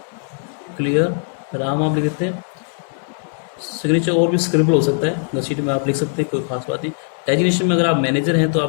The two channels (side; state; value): right; silent; 64 dB below the other